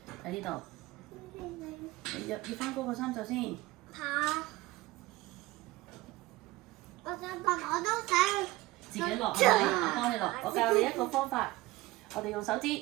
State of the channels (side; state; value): left; quieter; 19.6 dB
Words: 喺呢度，你要翻高個衫袖先。嚇！我想問，我都想自己落係咪？我幫你落。我教你一個方法，我哋用手指，